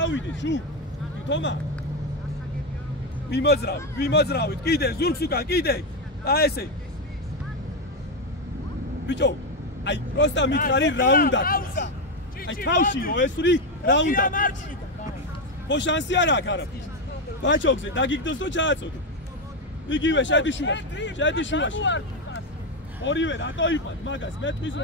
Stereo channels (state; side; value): normal; both; correlation 0.08